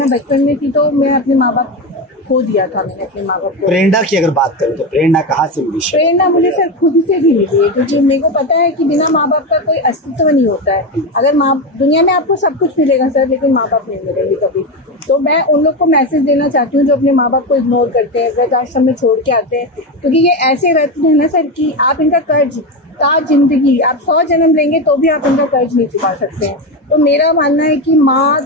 बचपन में थी तो मैं अपने माँ बाप खो दिया था। मैंने अपने माँ बाप को। प्रेरणा की अगर बात करें तो प्रेरणा कहाँ से मिली? प्रेरणा मुझे सर खुद से भी मिली है, क्योंकि मेरे को पता है कि बिना माँ बाप का कोई अस्तित्व नहीं होता है। अगर दुनिया में आपको सब कुछ मिलेगा सर, लेकिन माँ बाप नहीं मिलेंगे कभी। तो मैं उन लोग को मैसेज देना चाहती हूँ जो अपने माँ बाप को इग्नोर करते हैं, वृद्धाश्रम में छोड़ के आते हैं, क्योंकि ये ऐसे रत्न है ना सर कि आप इनका कर्ज जिंदगी, आप 100 जन्म लेंगे तो भी आप इनका कर्ज नहीं चुका सकते हैं। तो मेरा मानना है कि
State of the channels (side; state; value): both; normal; correlation 0.16